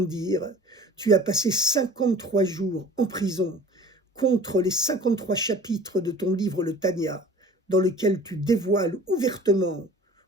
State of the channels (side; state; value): both; normal; correlation 0.45